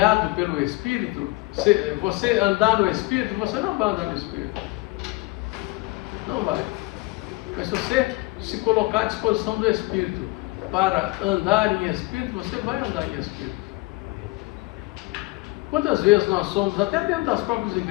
pelo Espírito, você andar no Espírito, você não vai andar no Espírito. Não vai. Mas se você se colocar à disposição do Espírito para andar em Espírito, você vai andar em Espírito. Quantas vezes nós somos, até dentro das próprias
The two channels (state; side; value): quieter; right; 22.7 dB